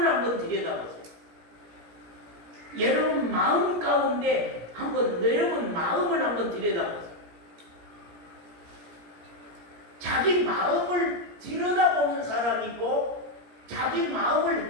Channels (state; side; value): late; left; 17 ms